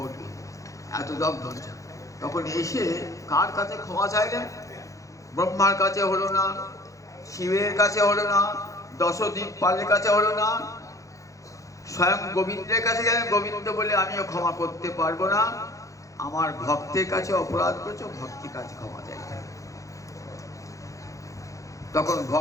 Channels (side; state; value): right; late; 0.16 ms